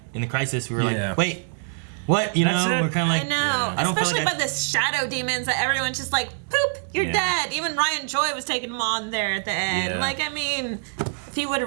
in the Crisis. We were like, wait, what? You That's know, it. we're kind of like, I know. I don't Especially feel like by the shadow demons that everyone's just like, poop, you're Yeah. dead. Even Ryan Joy was taking him on there at the end. Yeah. Like, I mean, if he would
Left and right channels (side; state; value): left; silent; digital silence